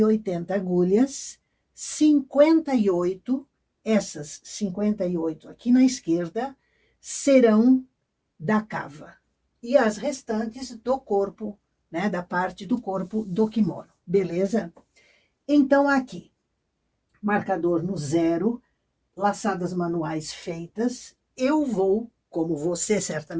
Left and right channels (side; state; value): both; identical; correlation 1.00